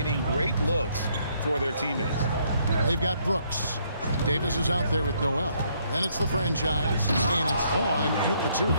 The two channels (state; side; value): inverted; both; correlation -0.70